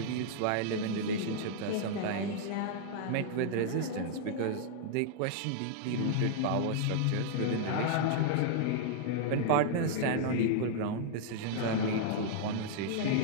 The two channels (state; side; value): different; both; correlation -0.01